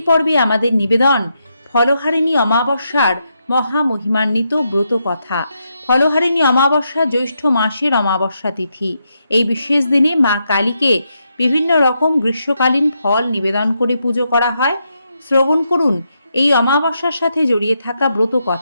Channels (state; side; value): inverted; both; correlation -0.82